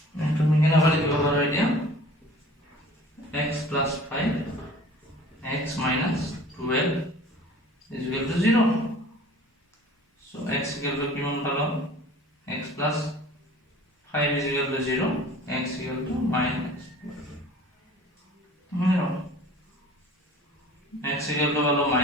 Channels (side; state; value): both; normal; correlation 0.46